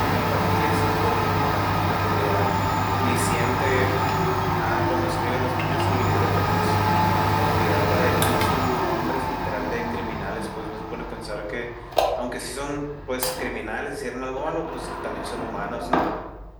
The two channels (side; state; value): both; identical; correlation 1.00